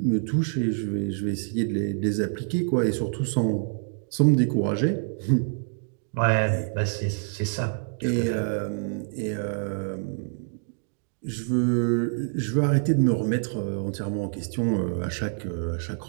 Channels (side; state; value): left; silent; 61 dB below the other